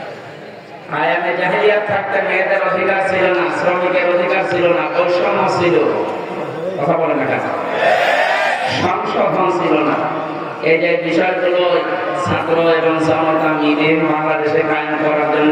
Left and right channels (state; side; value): identical; both; correlation 1.00